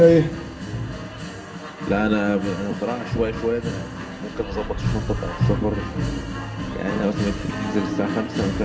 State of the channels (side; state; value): both; identical; correlation 1.00